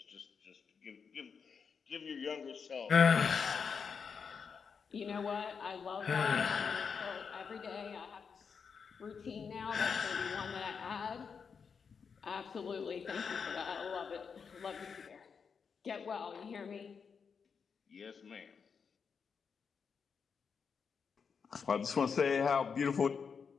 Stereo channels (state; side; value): quieter; right; 6.0 dB